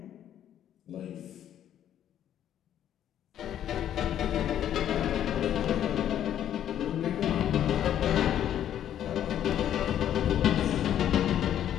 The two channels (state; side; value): quieter; right; 10.6 dB